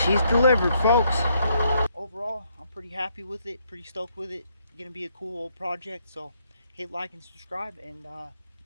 delivered, folks. Overall, I'm pretty happy with it, pretty stoked with it. Gonna be a cool old project, so hit like and subscribe, and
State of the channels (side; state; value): both; inverted; correlation -0.73